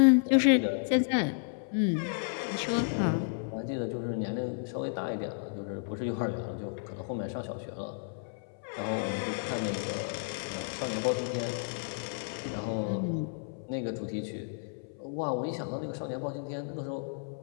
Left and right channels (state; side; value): silent; right; 56 dB below the other